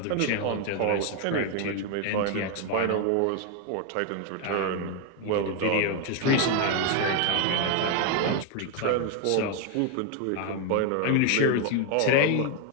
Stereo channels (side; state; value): both; different; correlation 0.01